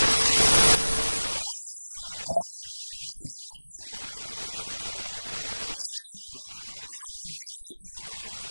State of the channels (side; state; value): both; inverted; correlation -1.00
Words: We quarrel among ourselves. And then when our brothers